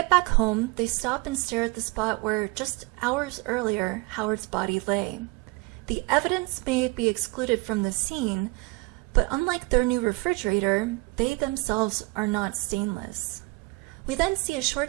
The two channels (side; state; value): left; quieter; 24.7 dB